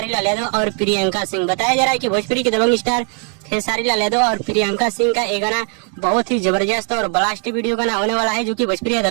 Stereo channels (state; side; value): quieter; left; 38.5 dB